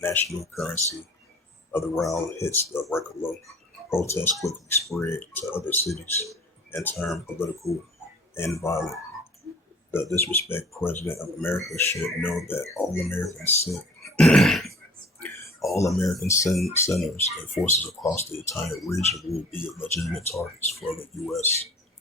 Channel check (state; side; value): normal; both; correlation 0.47